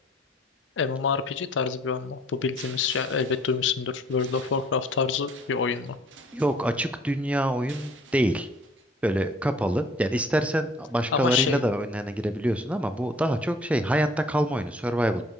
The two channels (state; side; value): normal; both; correlation 0.56